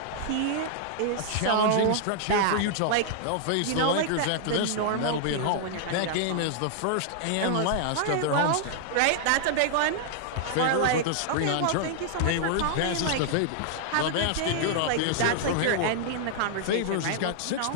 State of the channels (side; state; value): both; different; correlation -0.01